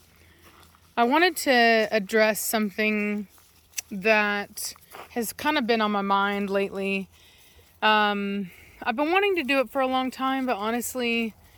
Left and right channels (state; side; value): identical; both; correlation 1.00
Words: I wanted to address something that has kind of been on my mind lately. I've been wanting to do it for a long time, but honestly,